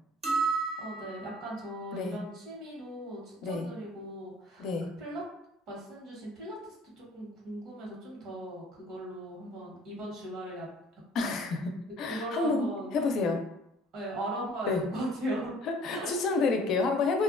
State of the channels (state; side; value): normal; both; correlation 0.53